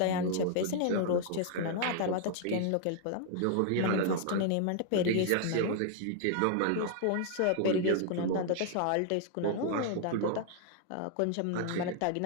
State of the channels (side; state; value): both; different; correlation 0.00